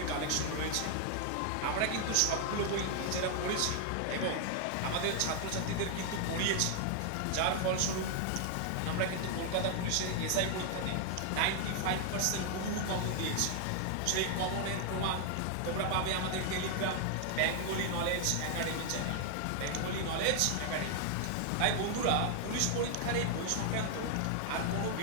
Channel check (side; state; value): both; different; correlation 0.00